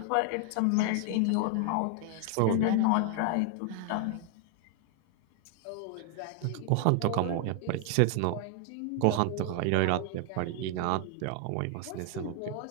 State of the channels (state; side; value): different; both; correlation 0.00